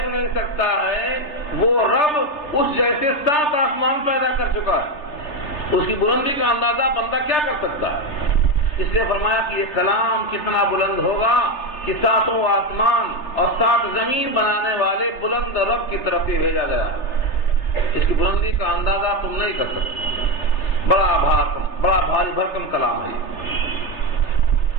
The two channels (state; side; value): late; right; 3.3 ms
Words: نہیں سکتا ہے وہ رب اس جیسے 7 آسمان پیدا کر چکا ہے، اس کی بلندی کا اندازہ بندہ کیا کر سکتا ہے؟ اس لیے فرمایا کہ یہ کلام کتنا بلند ہوگا کہ 7 آسمان اور 7 زمین بنانے والے بلند رب کی طرف سے بھیجا گیا ہے۔ اس کی بلندی کا اندازہ تم نہیں کر سکتے، بڑا بھاری بھرکم کلام ہے۔